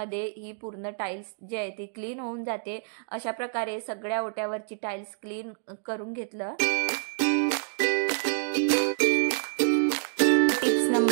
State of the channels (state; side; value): silent; left; digital silence